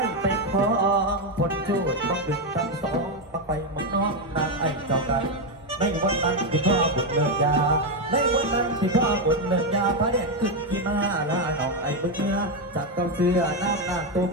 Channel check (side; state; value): both; normal; correlation 0.07